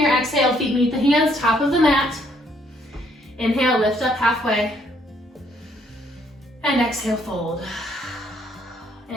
exhale, feet meet the hands, top of the mat. Inhale, lift up halfway. And exhale, fold.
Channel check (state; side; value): normal; both; correlation 0.68